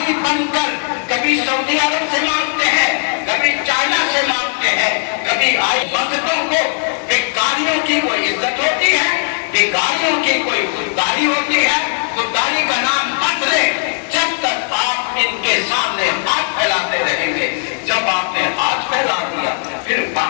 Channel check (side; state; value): right; silent; 55 dB below the other